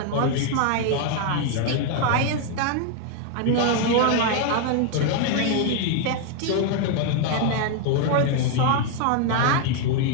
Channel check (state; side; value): different; both; correlation 0.01